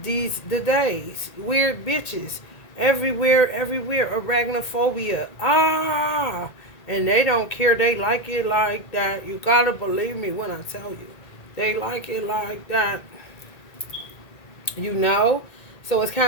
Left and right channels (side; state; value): right; late; 1.8 ms